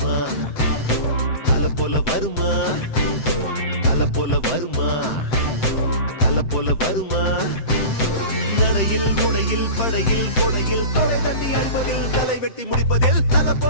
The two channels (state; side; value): late; right; 7.8 ms